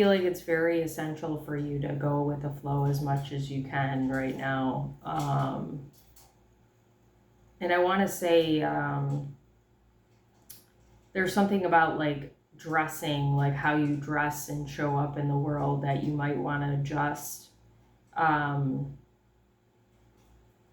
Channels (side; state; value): both; identical; correlation 1.00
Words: like it's very essential for you to go with the flow as much as you can right now. And I want to say there's something about like dressing, like how you dress and show up in the world, that you might want to adjust.